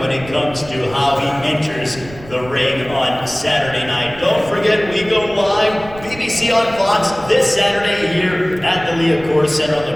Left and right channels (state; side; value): noise; right; rumble, 17 dB below the sound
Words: it comes to how he enters the ring on Saturday night. Don't forget, we go live, BBC on Fox, this Saturday here at the Liacouras Center